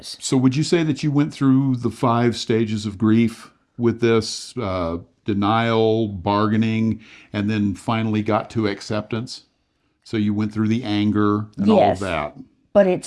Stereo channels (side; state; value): both; identical; correlation 1.00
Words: So would you say that you went through the 5 stages of grief with this, denial, bargaining, and then finally got to acceptance? So you went through the anger and all of that. But